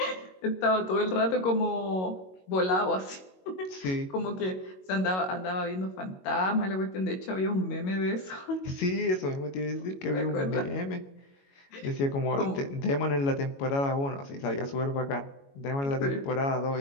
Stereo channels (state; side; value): late; right; 22 ms